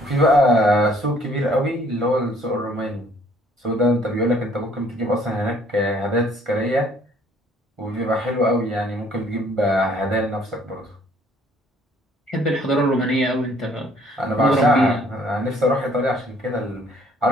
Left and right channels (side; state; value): both; normal; correlation 0.60